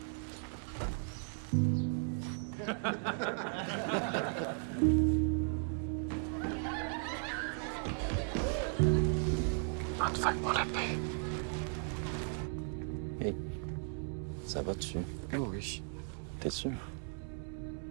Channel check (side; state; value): left; silent; 54 dB below the other